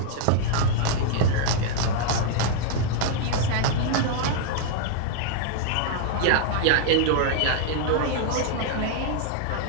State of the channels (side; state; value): both; different; correlation -0.01